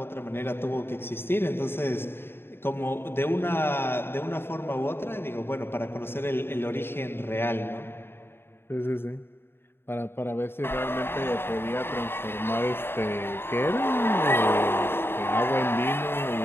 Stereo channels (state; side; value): late; right; 0.11 ms